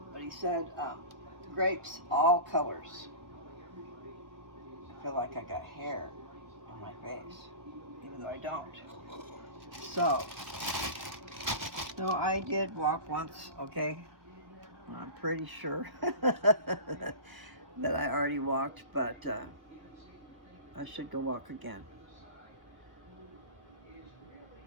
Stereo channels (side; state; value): left; late; 1.0 ms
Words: But he said grapes, all colors. I feel like I got hair on my face. even though I don't. So, no, I did walk once, okay? I'm pretty sure that I already walked, but I should go walk again.